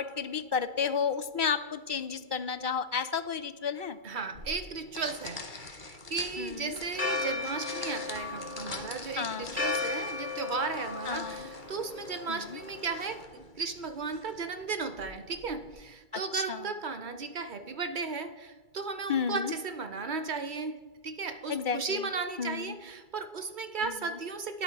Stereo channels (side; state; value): left; late; 2.3 ms